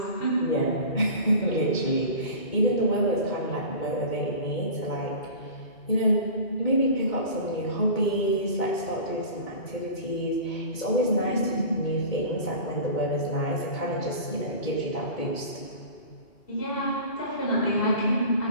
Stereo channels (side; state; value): right; late; 2.2 ms